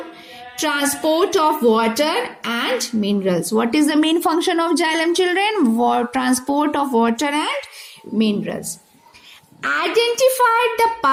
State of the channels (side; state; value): both; identical; correlation 1.00